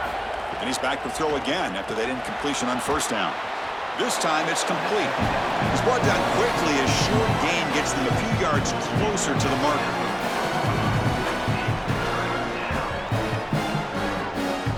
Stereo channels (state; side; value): identical; both; correlation 1.00